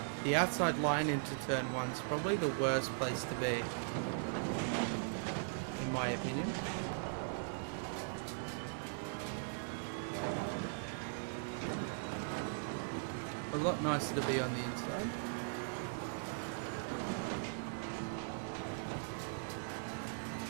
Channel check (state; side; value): silent; left; digital silence